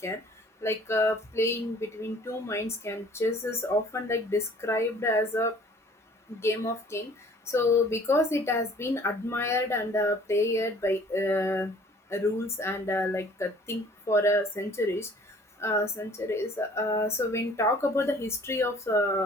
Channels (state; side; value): normal; both; correlation 0.53